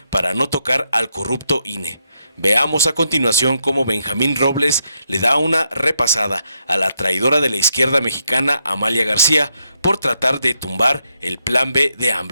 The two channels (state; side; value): inverted; both; correlation -0.80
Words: para no tocar al corrupto INE. Veamos a continuación cómo Benjamín Robles le da una repasada a la traidora de la izquierda mexicana Amalia García por tratar de tumbar el Plan B de